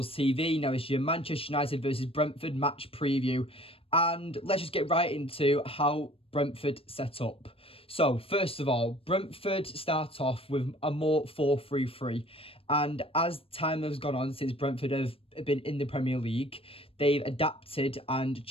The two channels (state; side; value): late; right; 0.27 ms